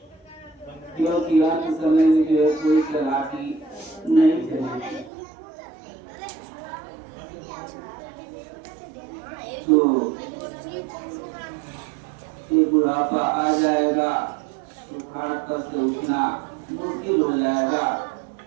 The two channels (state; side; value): drops out; left; at 5.1 s